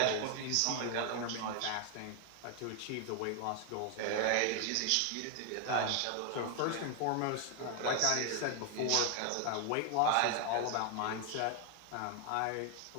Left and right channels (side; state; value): both; different; correlation 0.00